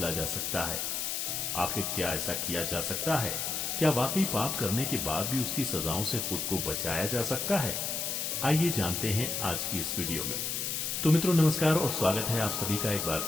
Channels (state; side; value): noise; left; hiss, 1 dB below the sound